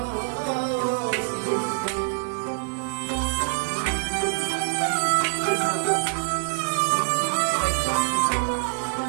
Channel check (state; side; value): silent; left; 58 dB below the other